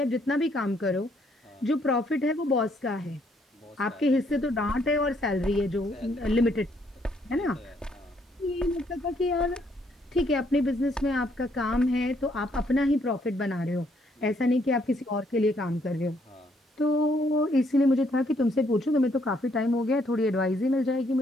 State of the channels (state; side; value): normal; both; correlation 0.70